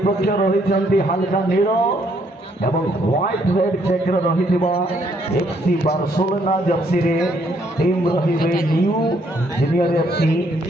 रही हल्का नील एवं व्हाइट रेड चेक रही FC बार्सिलोना जर्सी रे टीम रही न्यू जूनियर FC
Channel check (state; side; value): normal; both; correlation 0.69